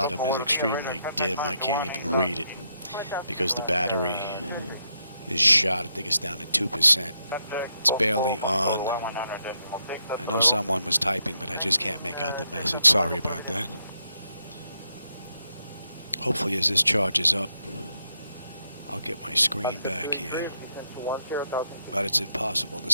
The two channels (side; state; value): both; inverted; correlation -0.79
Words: is extremely dim. I can't even read it because the battery is shot. I think it's down to 2%. It's barely on. I know someone was typing, but I just can't make out the message. Sorry about that. Hopefully as this charges up, I'll get my screen back here. But it's impossible to